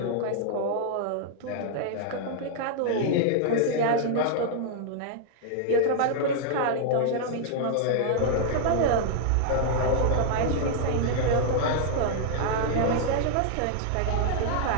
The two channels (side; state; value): both; different; correlation -0.01